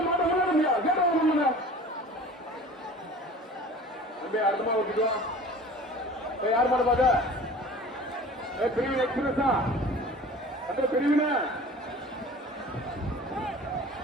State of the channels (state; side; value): normal; both; correlation 0.42